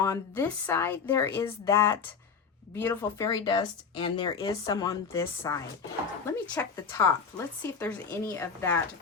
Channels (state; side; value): quieter; right; 5.9 dB